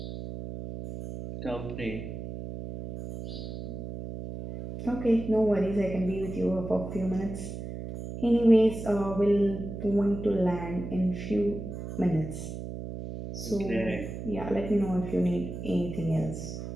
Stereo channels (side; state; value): right; noise; hum, 8 dB below the sound